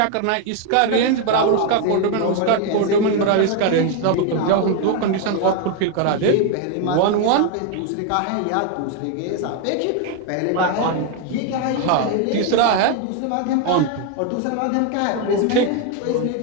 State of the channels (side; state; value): both; different; correlation 0.01